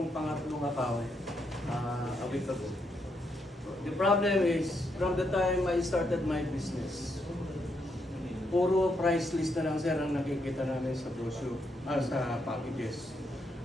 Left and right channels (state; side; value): normal; both; correlation 0.79